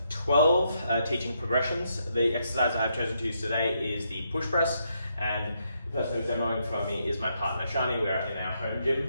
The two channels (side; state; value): both; inverted; correlation -0.78